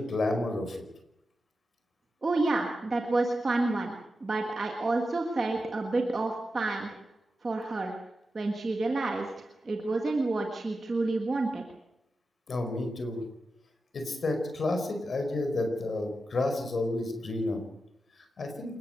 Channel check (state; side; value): normal; both; correlation 0.90